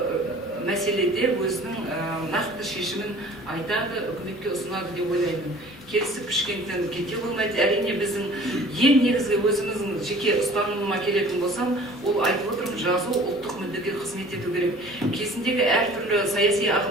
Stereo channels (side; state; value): both; normal; correlation 0.48